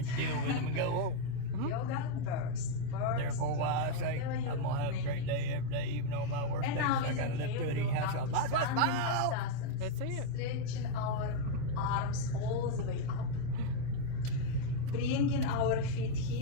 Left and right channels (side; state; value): both; different; correlation 0.01